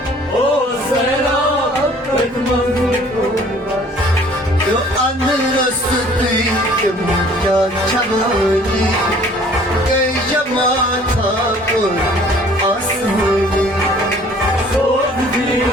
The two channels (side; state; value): both; normal; correlation 0.54